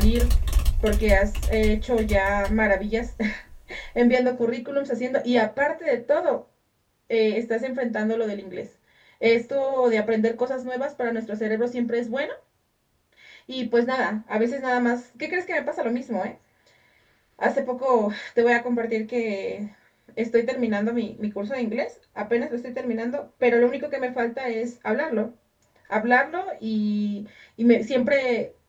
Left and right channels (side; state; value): both; identical; correlation 1.00